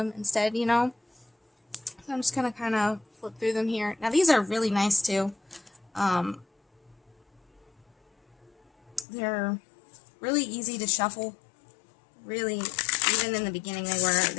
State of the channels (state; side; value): drops out; right; at 9.1 s